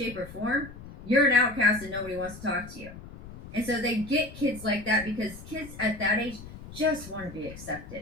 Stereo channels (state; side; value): noise; left; rumble, 15 dB below the sound